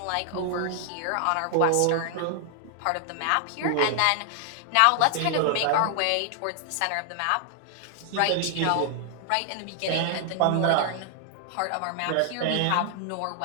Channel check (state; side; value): different; both; correlation 0.00